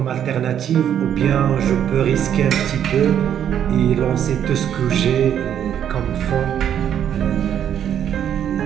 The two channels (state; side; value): quieter; left; 9.5 dB